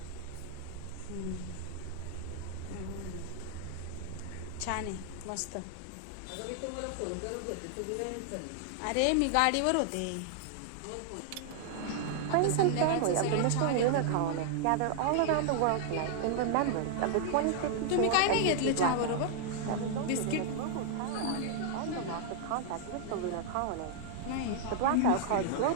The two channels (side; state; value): both; different; correlation 0.00